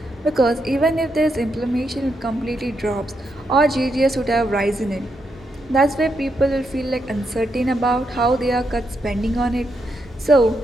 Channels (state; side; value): normal; both; correlation 0.81